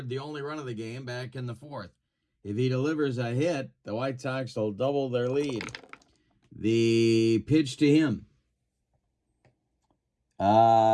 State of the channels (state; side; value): identical; both; correlation 1.00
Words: the only run of the game back in the 4th. If he delivers a hit, the White Sox will double their lead. The pitch to him